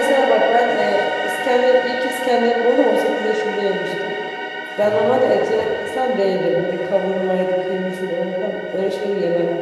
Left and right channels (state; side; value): identical; both; correlation 1.00